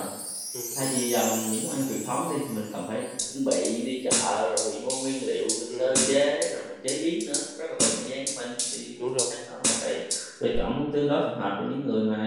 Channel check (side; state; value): both; identical; correlation 1.00